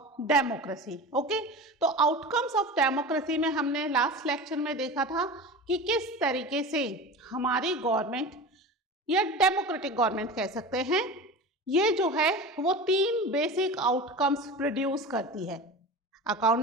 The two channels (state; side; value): normal; both; correlation 0.31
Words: democracy. Okay, तो outcomes of democracy में हमने last lecture में देखा था कि किस तरीके से हमारी गवर्नमेंट या डेमोक्रेटिक गवर्नमेंट कह सकते हैं, ये जो है वो तीन बेसिक आउटकम्स प्रोड्यूस करती है.